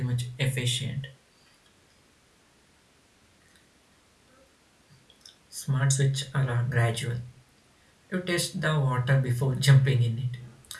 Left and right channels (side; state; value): both; identical; correlation 1.00